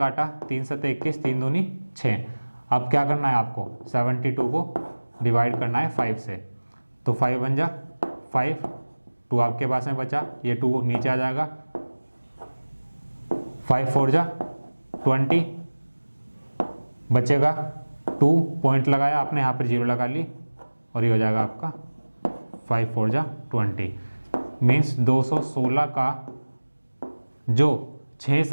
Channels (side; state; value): both; inverted; correlation -1.00